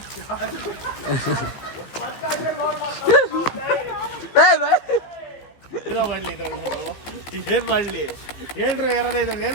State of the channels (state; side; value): late; right; 15 ms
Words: ಏನ್ ಮಾಡ್ಲಿ ಹೇಳ್ರಿ. ಎರಡೈದು